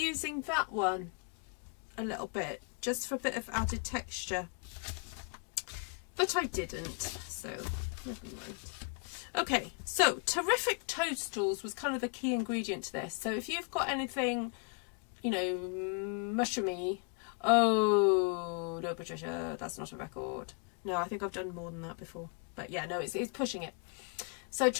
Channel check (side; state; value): right; quieter; 36.8 dB